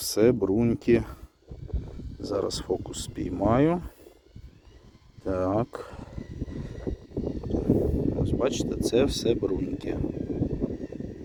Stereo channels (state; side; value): identical; both; correlation 1.00